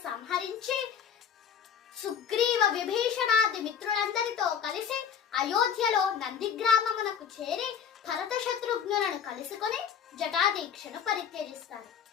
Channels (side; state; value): right; quieter; 7.8 dB